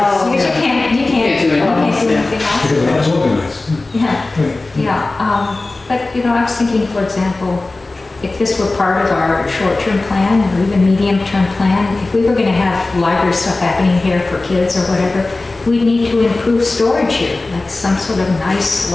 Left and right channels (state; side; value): quieter; right; 3.2 dB